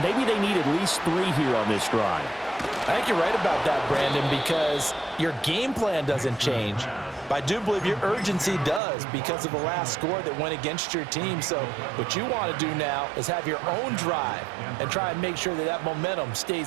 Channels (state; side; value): drops out; left; at 8.8 s